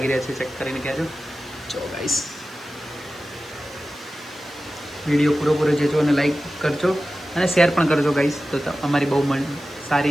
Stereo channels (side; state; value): right; noise; hiss, 26 dB below the sound